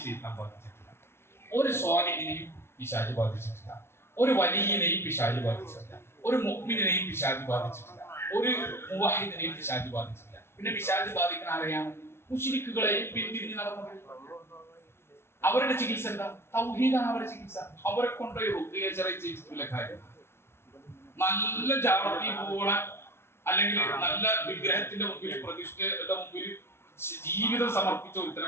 ശൈത്താൻ ബാധിച്ചിട്ടില്ല, ഒരു സ്വാലിഹിനെയും പിശാച് ബാധിച്ചിട്ടില്ല, ഒരു വലിയനെയും പിശാച് ബാധിച്ചിട്ടില്ല, ഒരു മുഅ്മിനെയും പിശാച് ബാധിച്ചിട്ടില്ല, ഒരു മുവഹിദിനെയും പിശാച് ബാധിച്ചിട്ടില്ല. പിന്നെ പിശാച് ബാധിക്കുന്ന ആരെയാണ്? മുശ്രിക്കുകളെയും പിന്തിരിഞ്ഞ് നടന്നത്. അവരുടെ ചികിത്സ എന്താ? തൗഹീദാണ് അവരുടെ ചികിത്സ. അവരെ കൊണ്ടുപോയി റുഖ്യ ചെയ്യിച്ചിട്ടുള്ള കാര്യം, നല്ല ജാറത്തി പോണ അല്ലെങ്കിൽ നല്ല വിഗ്രഹത്തിന്റെ മുമ്പിൽ, പ്രതിഷ്ഠയുടെ മുമ്പിൽ ജീവിതം സമർപ്പിച്ച ഒരുത്തനെ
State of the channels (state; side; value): late; right; 0.12 ms